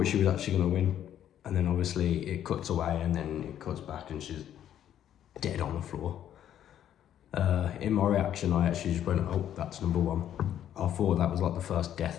she was actually going to win, and then obviously it cuts away and then it cuts back and she's dead on the floor. In my reaction, I actually just went, oh, that's number 1. I thought that was like the first death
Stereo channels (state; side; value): quieter; right; 10.7 dB